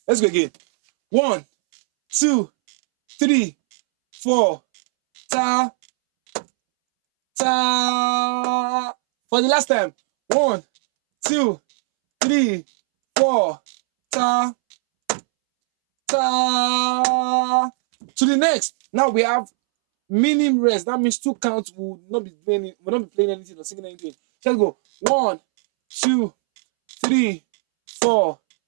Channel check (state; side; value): silent; left; 66 dB below the other